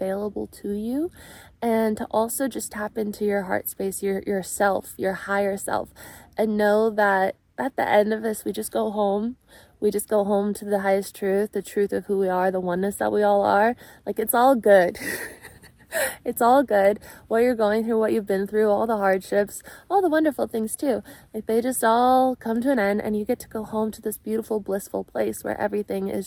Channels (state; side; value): identical; both; correlation 1.00